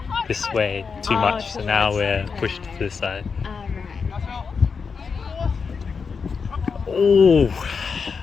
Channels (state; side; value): quieter; right; 5.5 dB